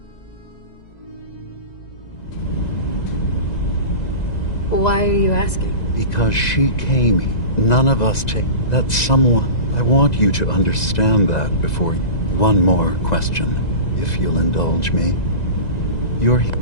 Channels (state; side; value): late; right; 2.0 ms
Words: Why are you asking? Because she came here. None of us take... That someone... I want you to understand that before you... One more question, if you'll indulge me. You're here.